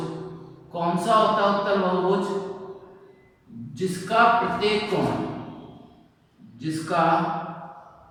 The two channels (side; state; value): both; identical; correlation 1.00